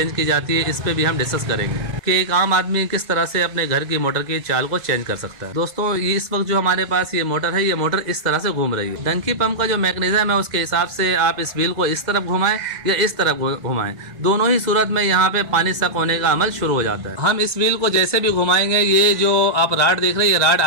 की जाती है, इस पर भी हम डिस्कस करेंगे कि एक आम आदमी किस तरह से अपने घर की मोटर की चाल को चेंज कर सकता है। दोस्तों, ये इस वक्त जो हमारे पास ये मोटर है, ये मोटर इस तरह से घूम रही है। डंकी पंप का जो मैकेनिज्म है उसके हिसाब से आप इस व्हील को इस तरफ घुमाएं या इस तरफ घुमाएं, दोनों ही सूरत में यहाँ पे पानी सक होने का अमल शुरू हो जाता है। हम इस व्हील को जैसे भी घुमाएंगे, ये जो आप राड देख रहे हैं, ये राड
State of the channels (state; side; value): late; left; 2.0 ms